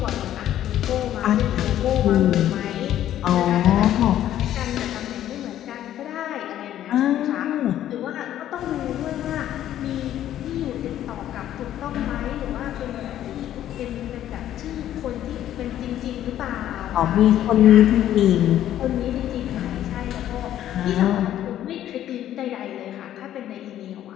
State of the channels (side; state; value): right; quieter; 11.9 dB